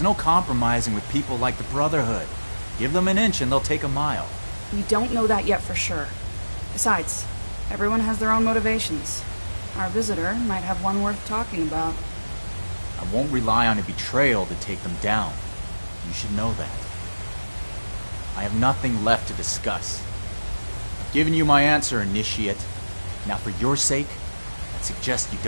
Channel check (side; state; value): both; inverted; correlation -1.00